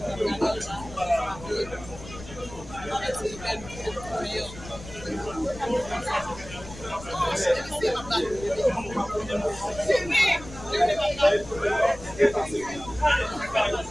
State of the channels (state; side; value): noise; left; rumble, 15 dB below the sound